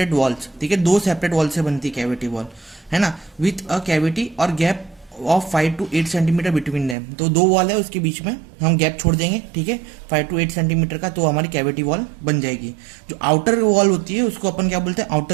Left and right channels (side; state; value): left; drops out; at 7.0 s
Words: walls, ठीक है, 2 सेपरेट वॉल से बनती कैविटी वॉल, है ना, विथ अ कैविटी और gap of 5 to 8 centimetre between them. तो दो वॉल है उसके बीच में हम गैप छोड़ देंगे, ठीक है, 5 to 8 सेंटीमीटर का, तो हमारी कैविटी वॉल बन जाएगी। जो आउटर वॉल होती है उसको अपन क्या बोलते हैं,